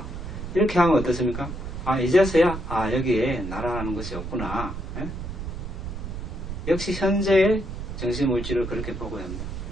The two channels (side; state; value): right; noise; rumble, 7 dB below the sound